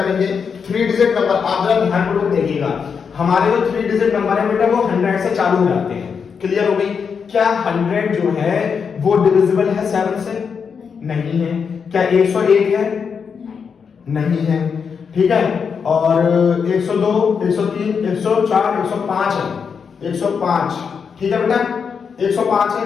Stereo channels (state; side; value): quieter; right; 6.2 dB